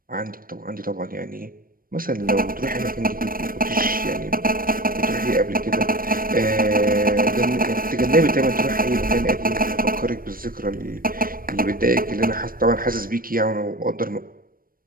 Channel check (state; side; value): late; left; 0.41 ms